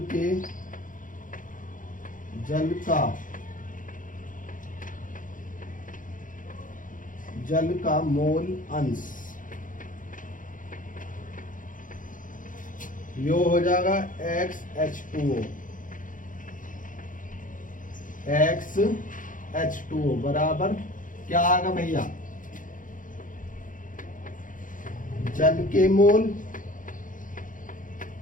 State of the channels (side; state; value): right; late; 0.38 ms